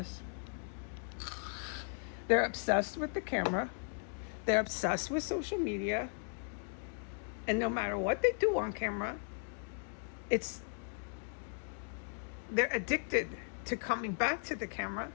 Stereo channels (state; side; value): silent; right; 53 dB below the other